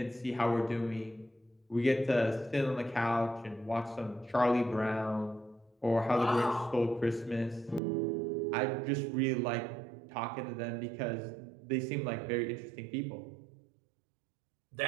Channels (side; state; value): left; drops out; at 7.8 s